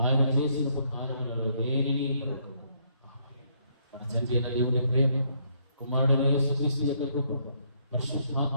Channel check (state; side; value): inverted; both; correlation -0.71